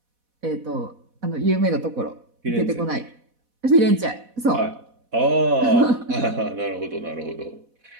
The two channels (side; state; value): left; late; 4.1 ms